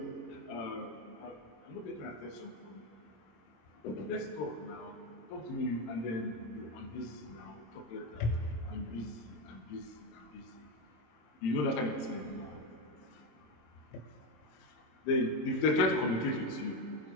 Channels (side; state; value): right; late; 26 ms